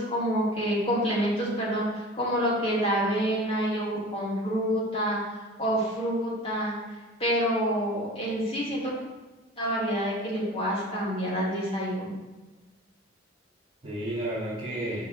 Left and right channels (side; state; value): both; normal; correlation 0.39